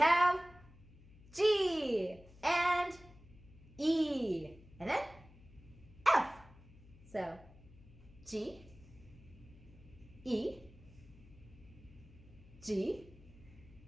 G and E, and then F. So G, E, G,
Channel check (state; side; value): noise; left; hum, 22 dB below the sound